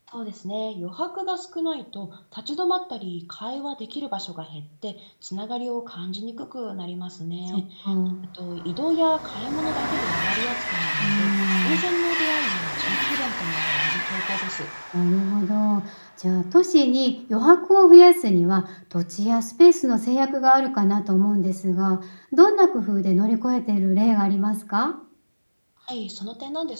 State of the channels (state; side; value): inverted; both; correlation -1.00